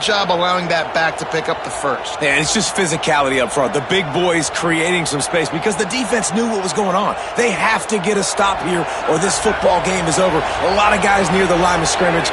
job allowing that back to pick up the first. Yeah, it's just physicality up front. The big boys creating some space because the defense knew what was going on. They have to get a stop here or this football game is over. A lot of guys near the line of scrimmage,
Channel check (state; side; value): identical; both; correlation 1.00